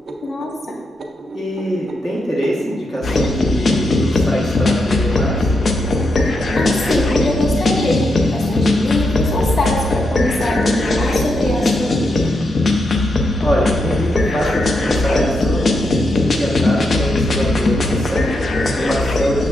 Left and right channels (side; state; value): both; normal; correlation 0.83